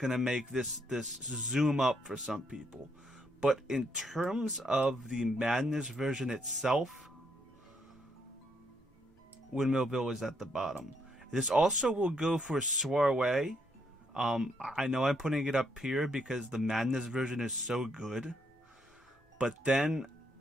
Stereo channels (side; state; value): both; normal; correlation 0.74